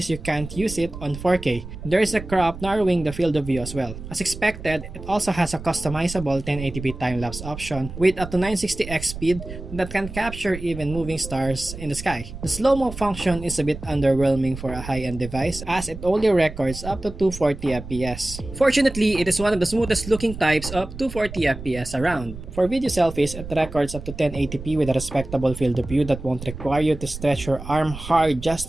you can't use it on 4K. There is a crop narrowing the field of view as well. As expected, it also has a customizable 1080p time-lapse option with up to 960x speed that can capture even moving stars in the sky. The slow-mo function is a bit underwhelming for a high-end device as it only records up to 240 FPS. Fortunately, it is one of the smoothest looking types of 240 FPS around. For video selfies, it records up to 1080p with a respectable field of view that won't require you to stretch your arm hard just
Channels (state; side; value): noise; right; rumble, 11 dB below the sound